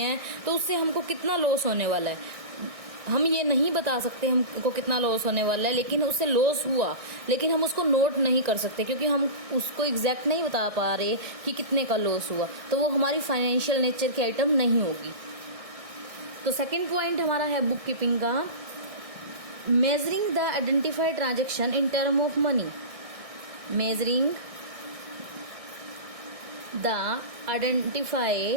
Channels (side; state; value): left; late; 1.6 ms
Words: तो उससे हमको कितना लॉस होने वाला है हम ये नहीं बता सकते हमको कितना लॉस होने वाला है, लेकिन उससे लॉस हुआ, लेकिन हम उसको नोट नहीं कर सकते क्योंकि हम उसको एग्जैक्ट नहीं बता पा रहे कि कितने का लॉस हुआ, तो वो हमारी फाइनेंशियल नेचर की आइटम नहीं होगी। तो सेकंड पॉइंट हमारा है बुक कीपिंग का, measuring the identified transaction in term of money. Measuring the